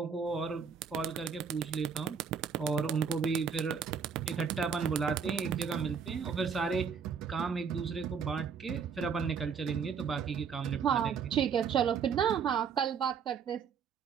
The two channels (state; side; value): quieter; left; 6.5 dB